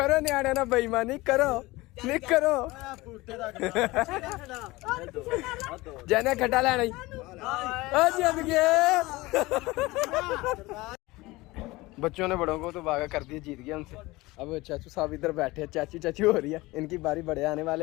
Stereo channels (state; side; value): quieter; right; 20.9 dB